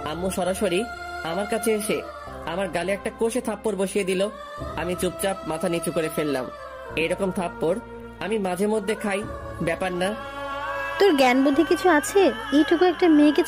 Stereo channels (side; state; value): both; identical; correlation 1.00